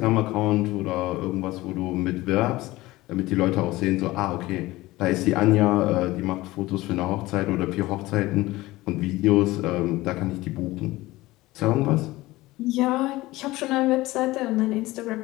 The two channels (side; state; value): right; quieter; 18.8 dB